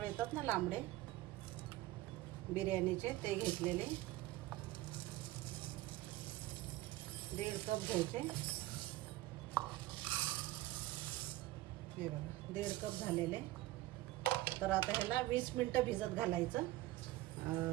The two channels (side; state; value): left; quieter; 17.2 dB